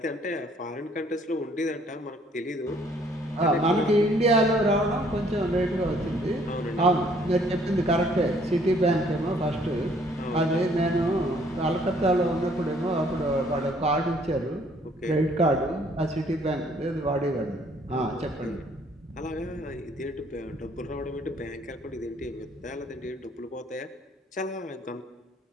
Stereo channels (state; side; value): normal; both; correlation 0.62